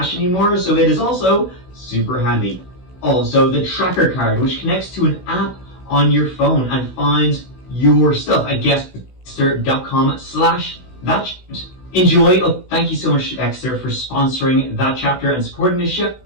anymore, so it is also super handy. Also, the tracker card, which connects to an app on your phone and finds your stuff at Exter.com/that. Enjoy. Oh, thank you so much, Exter, for sponsoring that chapter and supporting this show.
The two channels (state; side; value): late; right; 16 ms